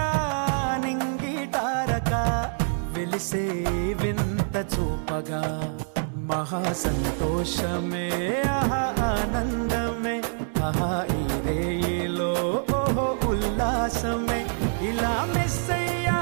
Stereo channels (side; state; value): left; silent; digital silence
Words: నింగిటారక వెలిసే వింత చూపగా మహా సంతోషమే ఆహా ఆనందమే ఆహా ఈ రేయిలో ఓహో ఉల్లాసమే. ఇలా మెస్సయ్యా